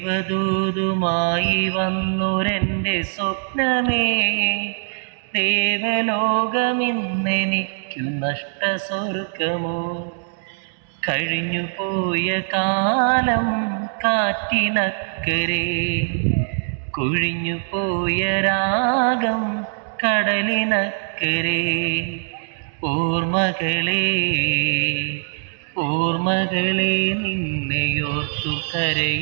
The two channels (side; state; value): left; silent; digital silence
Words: വന്നൊരെൻ്റെ സ്വപ്നമേ, ദേവലോകമിന്നെനിക്കു നഷ്ടസ്വർഗമോ? കഴിഞ്ഞുപോയ കാലം കാറ്റിനക്കരെ, കൊഴിഞ്ഞുപോയ രാഗം കടലിനക്കരെ. ഓർമ്മകളെ ഓർമ്മകളെ നിന്നെയോർത്തു